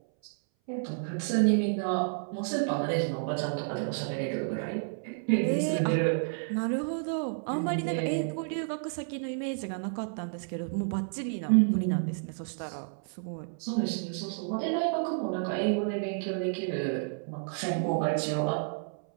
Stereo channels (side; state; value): left; silent; 57 dB below the other